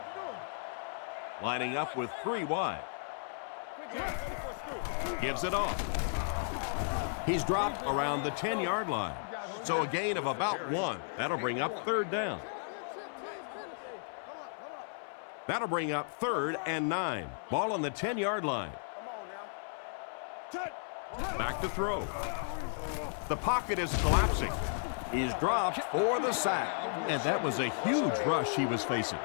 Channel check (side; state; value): right; silent; 55 dB below the other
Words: Lining up with 3 wide. Gives it off. He's dropped around the 10-yard line. So a gain of about 1. That'll bring up third down. That'll bring up 3rd and 9. Ball on the 10-yard line. Back to throw. The pocket is collapsing. He's dropped for the sack. And that was a huge rush he was facing.